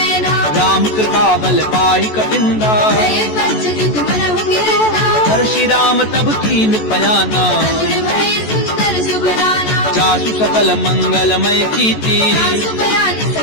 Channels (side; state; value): right; late; 14 ms